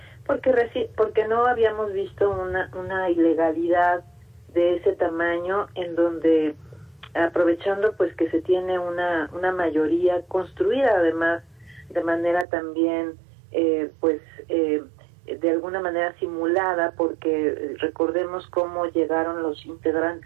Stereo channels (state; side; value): drops out; left; at 12.5 s